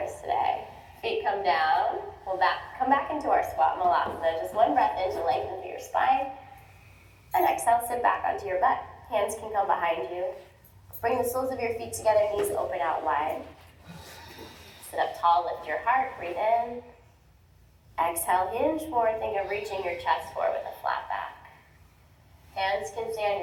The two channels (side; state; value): both; identical; correlation 1.00